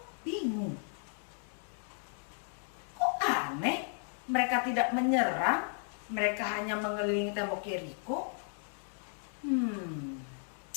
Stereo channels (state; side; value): silent; right; 55 dB below the other